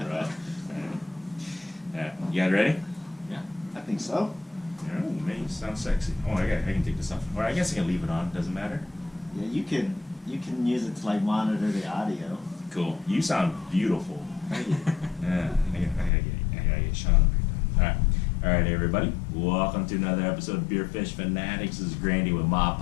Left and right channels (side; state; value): right; drops out; at 16.1 s